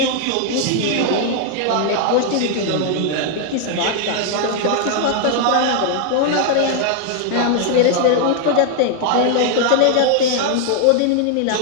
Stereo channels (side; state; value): both; different; correlation 0.00